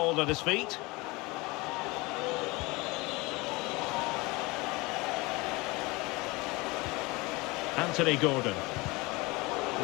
at his feet. Anthony Gordon.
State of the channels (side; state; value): right; quieter; 23.9 dB